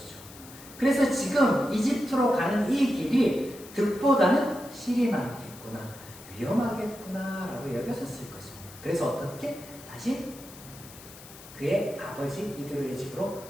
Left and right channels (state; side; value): noise; left; hiss, 18 dB below the sound